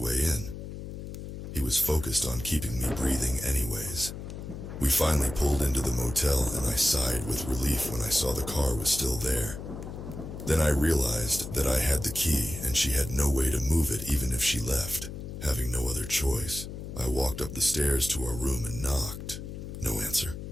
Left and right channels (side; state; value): left; noise; hum, 9 dB below the sound